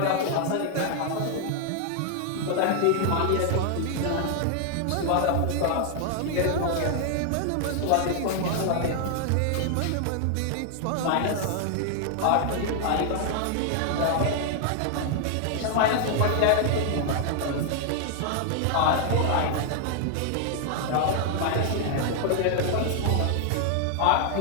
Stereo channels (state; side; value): different; both; correlation 0.00